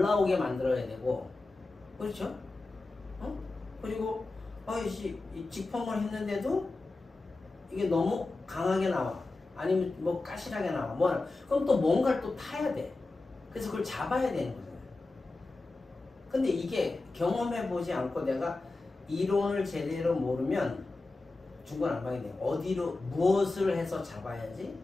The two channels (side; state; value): right; quieter; 3.3 dB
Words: 나오게 만들어야 되고. 그렇죠? 그리고 이 직펌을 했는데도 이게 너무 강하게 나와. 아니면 뭐 까실하게 나와. 그럼 또 뭔가를 또 타야 돼. 그래서 그걸 잡아야 되는 거잖아요. 근데 이게 경험해보지 않고 내가 이론을 제대로 모르면 중구난방이 돼요. 어디로 무엇을 해서 잡아야지,